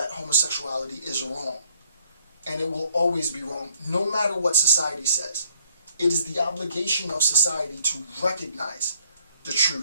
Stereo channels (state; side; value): inverted; both; correlation -0.66